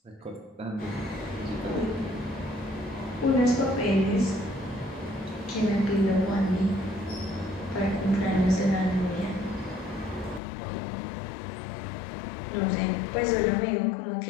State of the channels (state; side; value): drops out; right; at 10.4 s